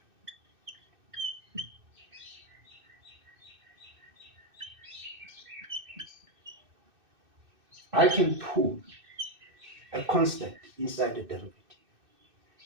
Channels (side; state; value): left; late; 2.6 ms